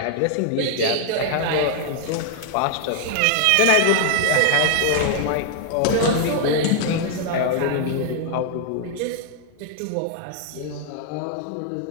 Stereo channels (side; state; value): both; different; correlation 0.00